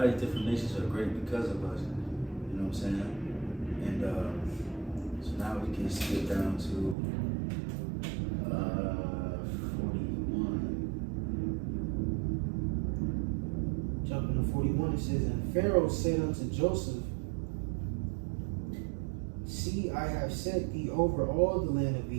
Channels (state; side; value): drops out; left; at 7.0 s